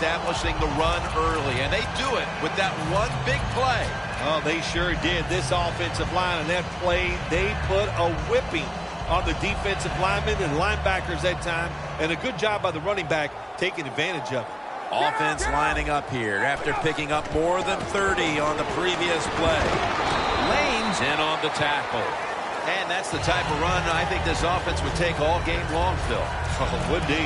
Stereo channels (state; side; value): identical; both; correlation 1.00